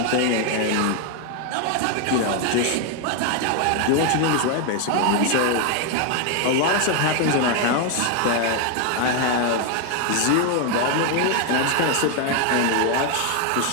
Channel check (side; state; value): both; different; correlation 0.01